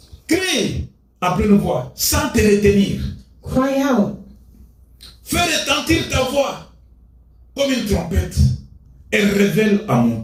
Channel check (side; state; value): both; identical; correlation 1.00